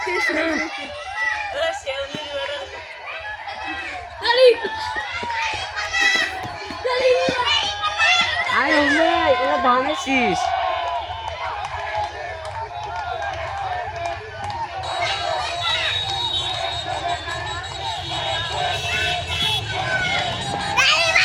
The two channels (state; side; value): identical; both; correlation 1.00